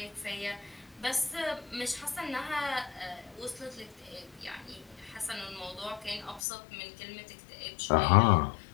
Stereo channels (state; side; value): drops out; right; at 6.4 s